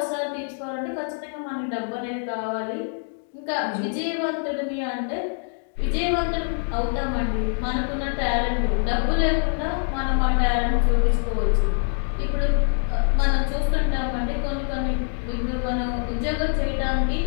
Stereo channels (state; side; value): silent; right; 61 dB below the other